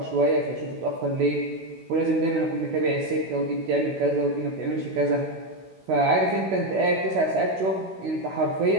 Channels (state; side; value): late; left; 16 ms